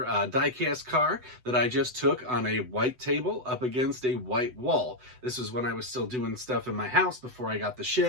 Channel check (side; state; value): left; late; 7.9 ms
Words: die-cast car that I just took on a white table up against a white wall. This was when I was still doing stuff in my house before I got the